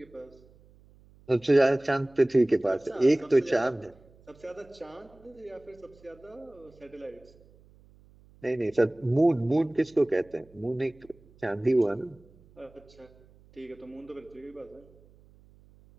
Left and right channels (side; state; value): right; noise; hum, 27 dB below the sound